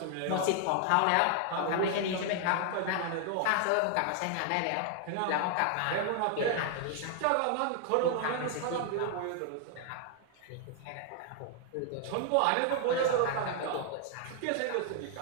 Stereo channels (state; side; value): different; both; correlation 0.00